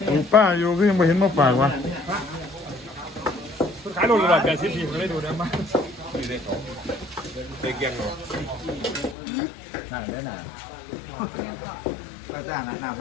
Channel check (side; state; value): right; drops out; at 9.2 s